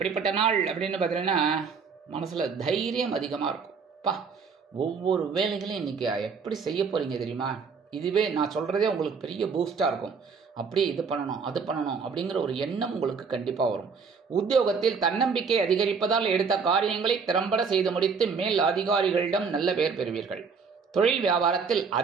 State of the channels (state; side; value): quieter; left; 5.5 dB